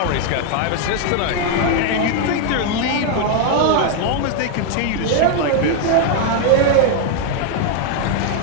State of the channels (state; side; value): different; both; correlation 0.00